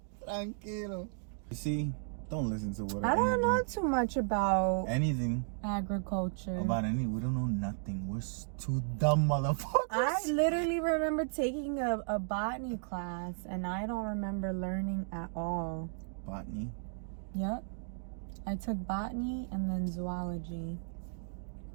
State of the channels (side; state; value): left; silent; digital silence